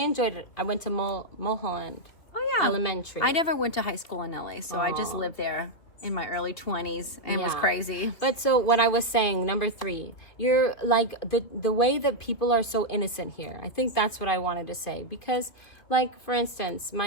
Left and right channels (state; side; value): late; right; 2.9 ms